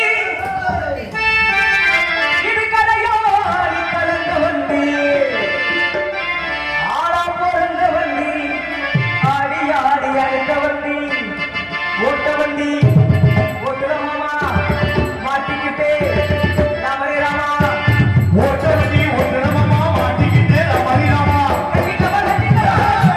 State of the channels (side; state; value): both; identical; correlation 1.00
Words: இது கடையோ கலந்த வண்டி, ஆளா பிறந்த வண்டி, ஆடி ஆடி அழைத்த வண்டி, ஓட்ட வண்டி, ஓட்டுறமாமா மாட்டிக்கிட்டே ராமரே ராமா, ஓட்ட வண்டி ஓட்டுறமாமா மாட்டிக்கிட்டே ராமரே ராமா.